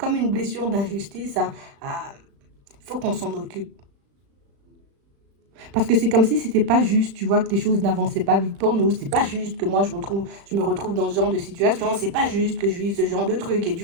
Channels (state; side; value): late; left; 36 ms